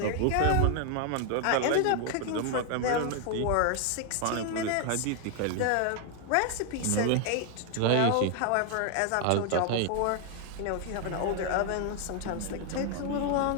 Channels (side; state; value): both; different; correlation 0.00